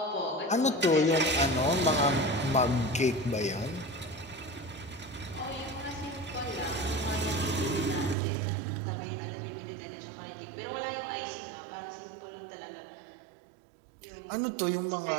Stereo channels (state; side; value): drops out; left; at 8.2 s